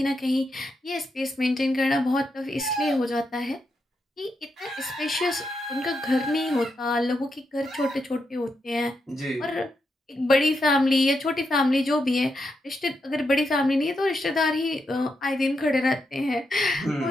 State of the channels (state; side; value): normal; both; correlation 0.84